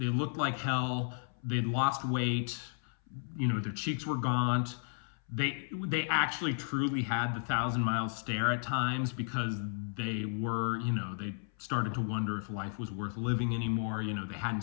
looked like hell. They'd lost weight. Their cheeks were gaunt. They actually truly had the 1,000-mile stare at times because they were, they started to wonder if life was worth living anymore. They hadn't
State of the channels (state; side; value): silent; right; 55 dB below the other